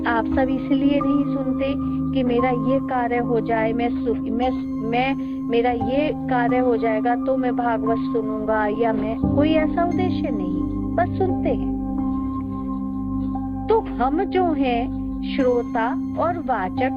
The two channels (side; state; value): both; identical; correlation 1.00